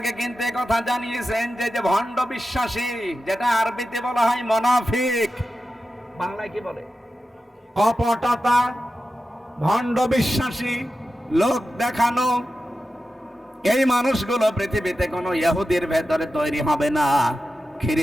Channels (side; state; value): both; normal; correlation 0.92